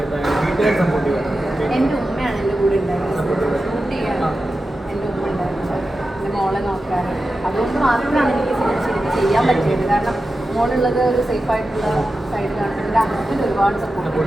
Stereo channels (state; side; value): normal; both; correlation 0.92